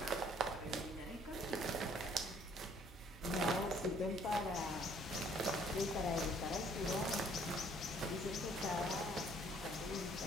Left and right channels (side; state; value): both; normal; correlation 0.61